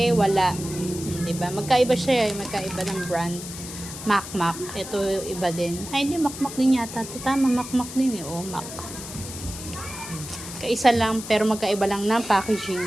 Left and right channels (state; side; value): noise; left; hiss, 11 dB below the sound